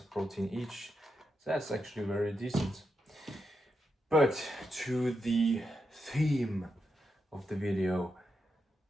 of protein each. So that's actually very decent. But to the theme of the video,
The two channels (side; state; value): both; normal; correlation 0.85